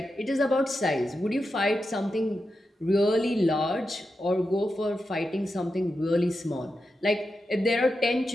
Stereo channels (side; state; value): both; normal; correlation 0.89